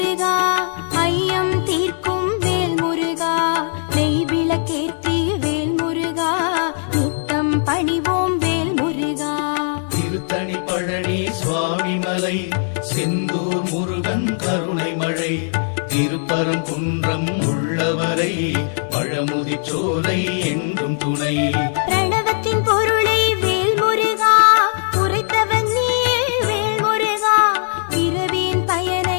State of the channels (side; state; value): right; silent; digital silence